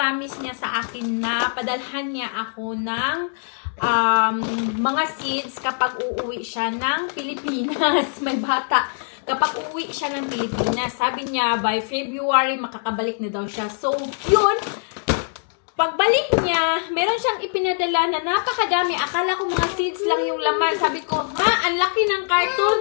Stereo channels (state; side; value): silent; right; 64 dB below the other